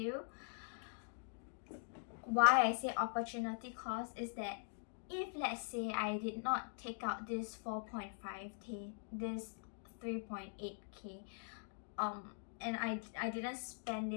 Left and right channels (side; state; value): right; silent; digital silence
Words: why I say opportunity cost is that if, let's say, I did not take out this 4.5k, this 3.8k, and I didn't spend